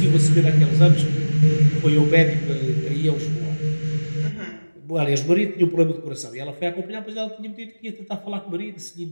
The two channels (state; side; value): inverted; both; correlation -1.00